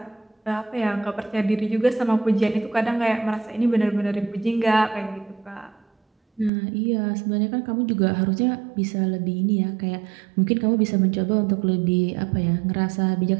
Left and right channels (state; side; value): drops out; left; at 6.5 s